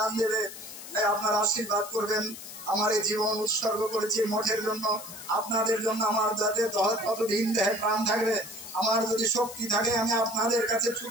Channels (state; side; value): noise; left; hiss, 13 dB below the sound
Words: দেবে। তাই আপনারা আশীর্বাদ করবেন। আমার এই জীবন উৎসর্গ করেছি মঠের জন্য, আপনাদের জন্য। আমার যাতে কতদিন দেহে প্রাণ থাকবে, আমার যদি শক্তি থাকে, আমি আপনাদের কাছে